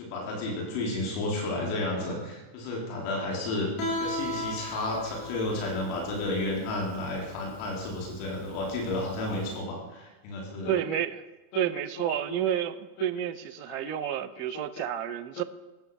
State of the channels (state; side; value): late; right; 31 ms